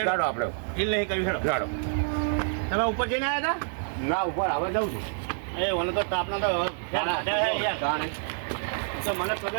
ચાલો આપણે હિલ નહીં કર્યું હેડો ચાલો તમે ઉપર જઈને આવ્યા હતા ના ઉપર હવે જાઉં છું એ મને તો તાપના તો તો મને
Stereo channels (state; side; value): silent; left; digital silence